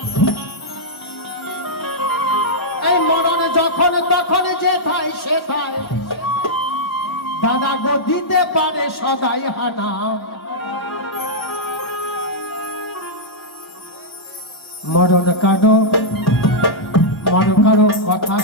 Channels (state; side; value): late; right; 1.1 ms